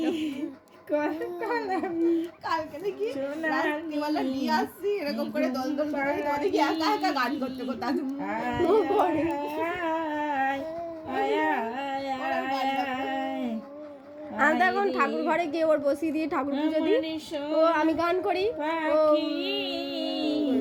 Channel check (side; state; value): both; identical; correlation 1.00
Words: কলকলাবি, কালকে দেখি সোনার রাত্রিবেলা নিয়ে আসছি এরকম করে দল দল করে দেখি একা একা গান করতে করতে আয়, আয়, আয়, আয়, আমি তো এখন ঠাকুর ঘরে গিয়ে ওর বসিয়ে দিয়ে ঠাকুর পুজো দিই, ও আমি গান করি। ও পাখি